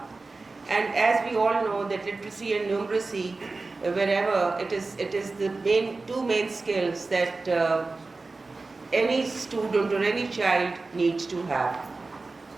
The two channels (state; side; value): quieter; left; 3.6 dB